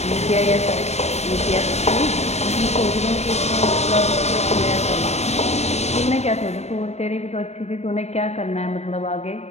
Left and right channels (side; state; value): right; late; 0.32 ms